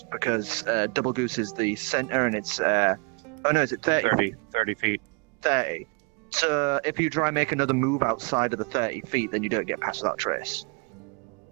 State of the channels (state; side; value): quieter; left; 30.5 dB